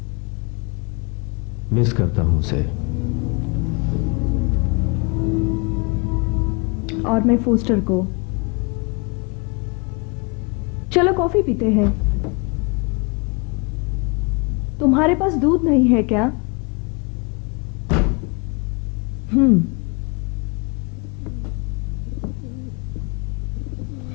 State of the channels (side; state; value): right; quieter; 31.8 dB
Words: मिस करता हूं उसे। और मैं फोस्टर को। चलो कॉफी पीते हैं। तुम्हारे पास दूध नहीं है क्या?